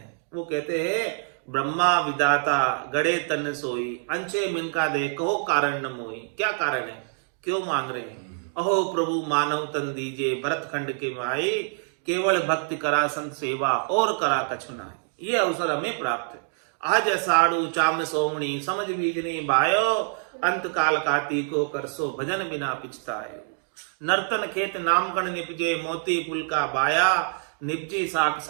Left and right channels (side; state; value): left; silent; 61 dB below the other